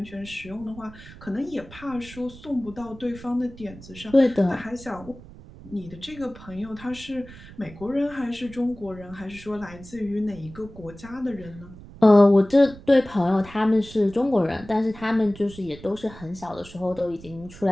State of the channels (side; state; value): right; noise; rumble, 18 dB below the sound